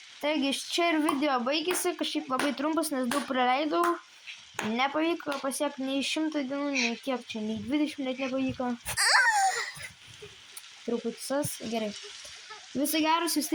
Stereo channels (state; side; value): identical; both; correlation 1.00